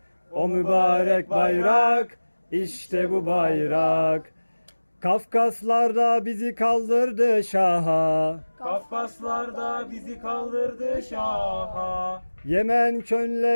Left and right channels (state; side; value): inverted; both; correlation -1.00